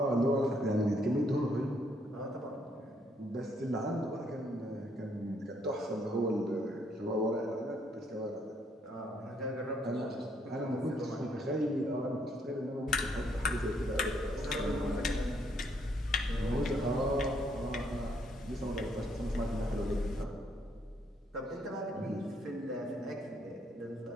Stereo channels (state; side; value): normal; both; correlation 0.70